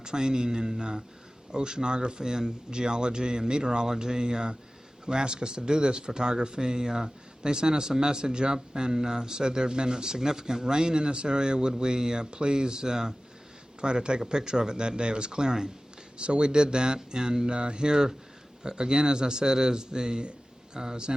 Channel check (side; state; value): both; normal; correlation 0.97